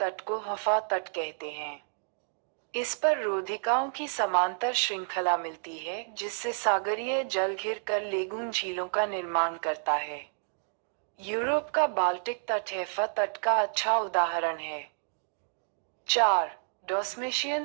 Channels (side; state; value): left; silent; digital silence